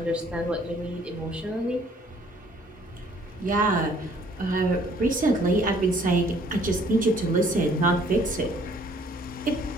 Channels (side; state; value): both; normal; correlation 0.59